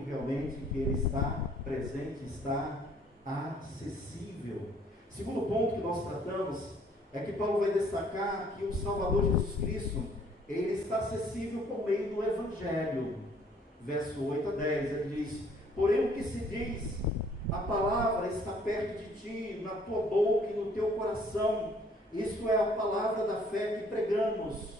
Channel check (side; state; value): both; normal; correlation 0.60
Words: realmente que Ele está presente, está acessível. Segundo ponto que nós tratamos é que Paulo vai destacar que o Salvador Jesus Cristo, Ele está acessível por meio do Evangelho. Verso 8 a 10, ele diz, porém o que se diz, a palavra está perto de ti, na tua boca e no teu coração. Isto é a palavra da fé que pregamos,